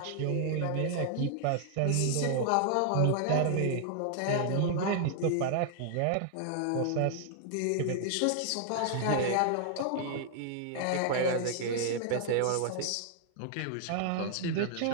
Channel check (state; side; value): different; both; correlation -0.01